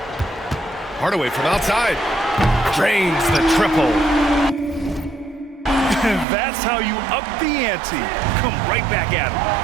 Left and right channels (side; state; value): left; drops out; at 6.2 s